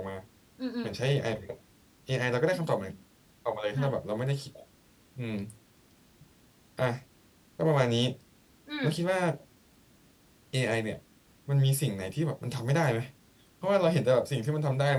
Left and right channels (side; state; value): both; identical; correlation 1.00